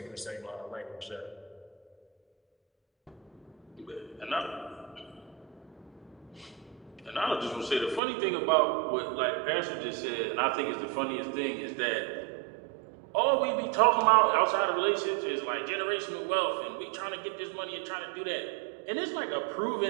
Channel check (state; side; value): drops out; left; at 8.0 s